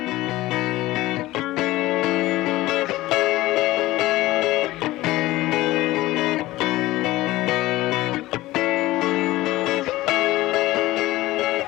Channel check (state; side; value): quieter; right; 17.6 dB